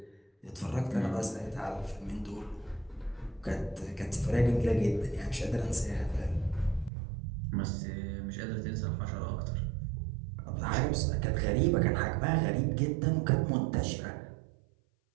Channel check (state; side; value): drops out; left; at 6.9 s